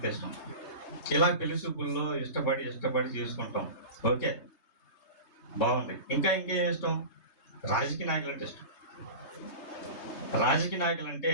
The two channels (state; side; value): late; right; 3.3 ms